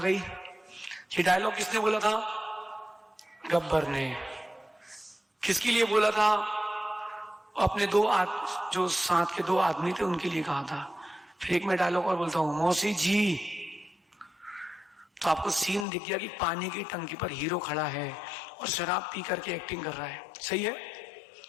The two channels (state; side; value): drops out; right; at 15.9 s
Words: ये डायलॉग किसने बोला था? गब्बर ने। किसके लिए बोला था? अपने जो साथ के 2 आदमी थे उनके लिए कहा था। फिर एक मैं डायलॉग और बोलता हूं, मौसी जी। तो आपको सीन दिख गया कि पानी की टंकी पर हीरो खड़ा है और शराब पी करके एक्टिंग कर रहा है, सही है।